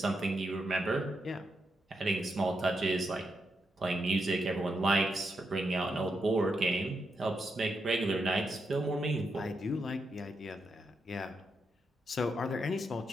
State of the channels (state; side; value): normal; both; correlation 0.83